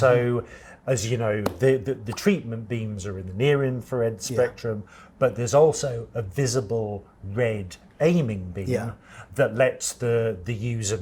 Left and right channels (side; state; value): both; identical; correlation 1.00